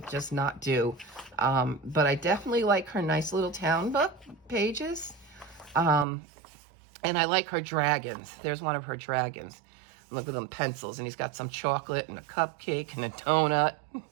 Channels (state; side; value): drops out; left; at 6.1 s